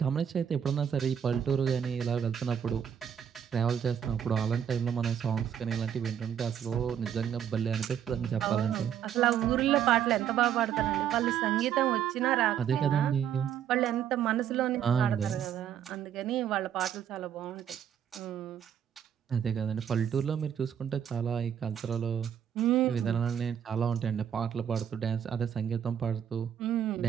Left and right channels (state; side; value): quieter; left; 9.0 dB